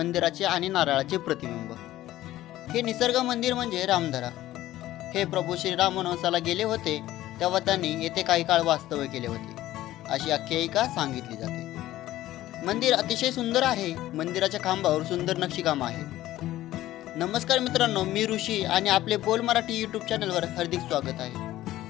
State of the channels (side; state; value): right; quieter; 14.9 dB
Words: आणि नारळाचे प्रतिबिंब. हे निसर्ग मंदिर म्हणजे रामधरा. हे प्रभू श्रीराम वनवासाला गेले होते तेव्हा त्यांनी येथे काही काळ वास्तव्य केले होते, अशी आख्यायिका सांगितली जाते. मंदिर अतिशय सुंदर आहे. मंदिराच्या खांबावर सुंदर नक्षीकाम आहे. नमस्कार मित्रांनो, मी ऋषी आणि आपले बोल मराठी यूट्यूब चॅनलवर हार्दिक स्वागत आहे.